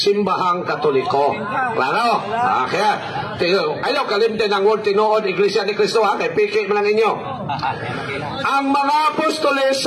Katoliko. Klaro? Kaya, ayaw kalimtin ang word tinuod Iglesia ni Kristo, ha? Kaya piki mo lang inyo. Ang mga apostoles,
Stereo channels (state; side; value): identical; both; correlation 1.00